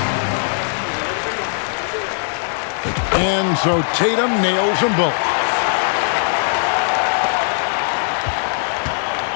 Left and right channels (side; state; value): right; silent; 66 dB below the other